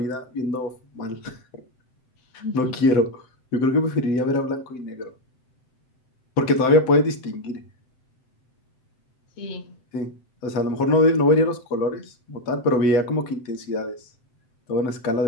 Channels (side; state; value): right; late; 7.8 ms